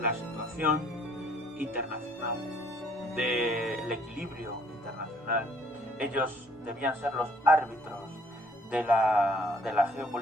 situación internacional, del equilibrio internacional. Ellos debían ser los árbitros de la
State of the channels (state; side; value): normal; both; correlation 0.61